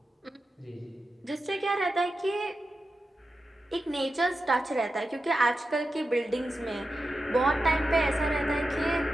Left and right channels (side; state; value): both; normal; correlation 0.91